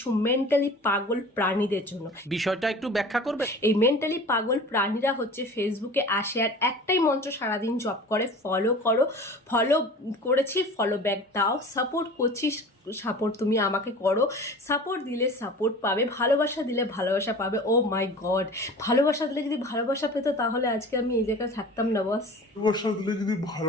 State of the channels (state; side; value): normal; both; correlation 0.40